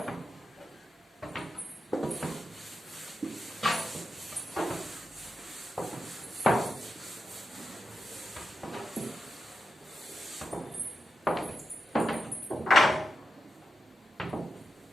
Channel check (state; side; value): normal; both; correlation 0.88